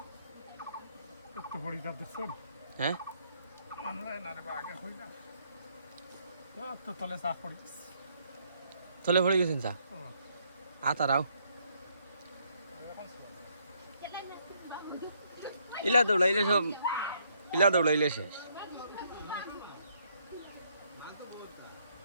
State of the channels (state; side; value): inverted; both; correlation -0.71